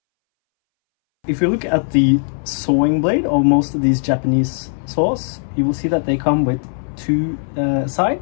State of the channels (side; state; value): right; silent; 64 dB below the other